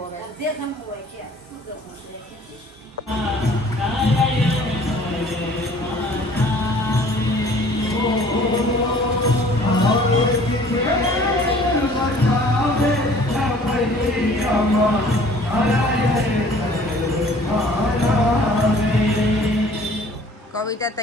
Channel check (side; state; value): both; normal; correlation 0.52